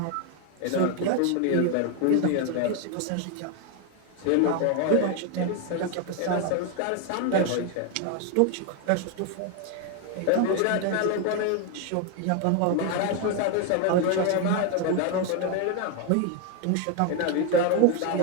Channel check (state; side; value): different; both; correlation 0.01